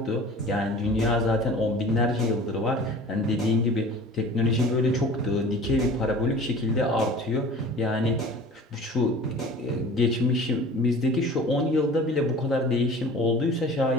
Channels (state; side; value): normal; both; correlation 0.42